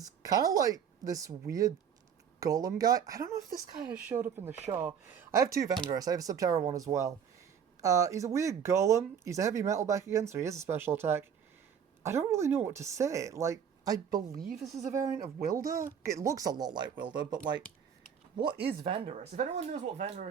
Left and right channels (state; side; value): quieter; left; 7.7 dB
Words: kind of like this weird golem guy. I don't know if this guy has showed up in the show. I have two Vandorus. I have a Subterra one as well. He's a weird golem. He's a heavy metal back again, so he has a special attack. I don't really know what to say. Like, I believe this is a variant of Wilder. It looks a lot like Wilder, but like, what is Vandorus? If anyone knows what